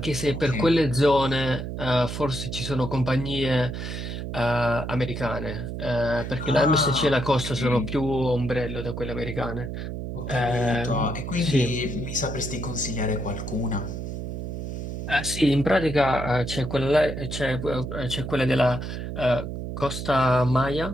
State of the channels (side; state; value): right; noise; hum, 6 dB below the sound